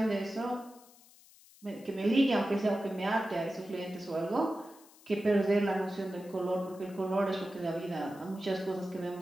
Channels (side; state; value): left; noise; hiss, 25 dB below the sound